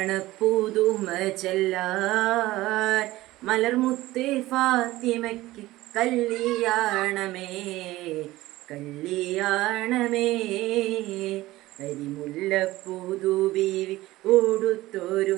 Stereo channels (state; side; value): quieter; left; 17.6 dB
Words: പുതുമ ചെല്ലാൻ മലർമുത്ത് ഫാത്തിമയ്ക്ക് കല്യാണമേ കല്യാണമേ. അരിമുല്ല പുതുബീവി